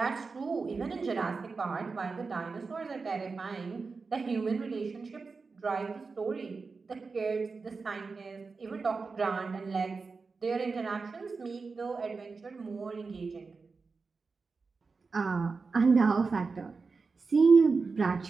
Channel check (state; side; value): quieter; left; 4.4 dB